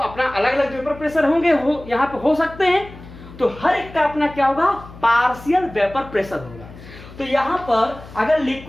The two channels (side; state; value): left; noise; hum, 17 dB below the sound